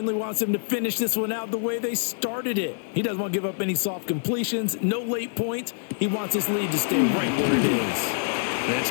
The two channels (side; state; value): right; silent; digital silence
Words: wants them to finish this one out the way they started it. He doesn't want to give up any soft completions, no late points. He wants this lead to stay right where it is. That's